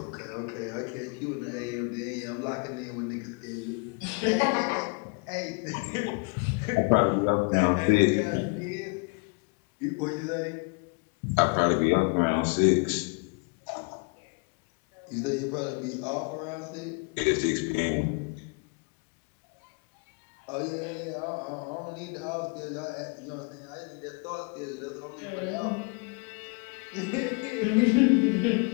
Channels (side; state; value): right; quieter; 32.8 dB